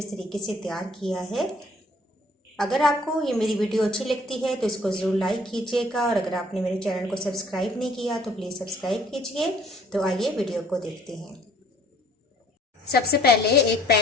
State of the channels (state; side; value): normal; both; correlation 0.58